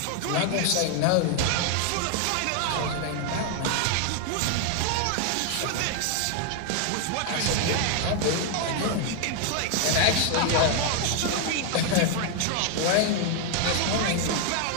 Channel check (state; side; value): different; both; correlation 0.00